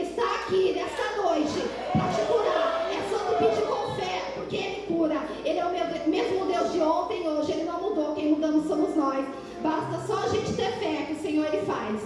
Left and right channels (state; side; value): identical; both; correlation 1.00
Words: está aqui nessa noite para te curar. É só tu pedir com fé, porque Ele cura. Ele é o mesmo Deus de ontem e hoje. Ele não mudou, quem mudamos somos nós. Basta só a gente ter fé que o Senhor Ele